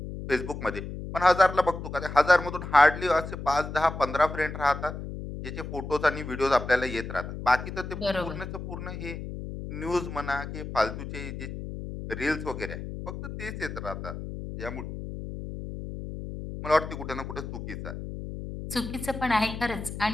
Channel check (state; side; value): noise; left; hum, 8 dB below the sound